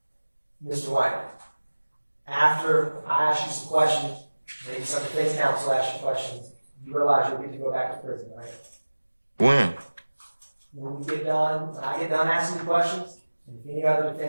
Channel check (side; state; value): both; inverted; correlation -1.00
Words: Mr. White, after I asked you some questions, maybe some defense counsel asked you questions, you realize you'll get to go back to prison, right? When? When I get done asking you questions, and if any other